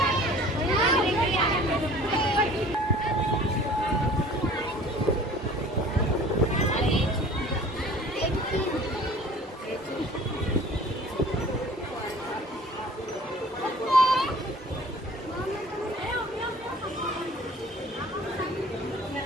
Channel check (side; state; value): both; normal; correlation 0.48